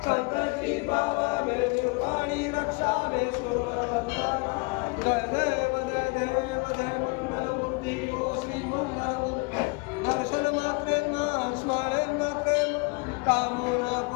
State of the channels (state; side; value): quieter; right; 29.3 dB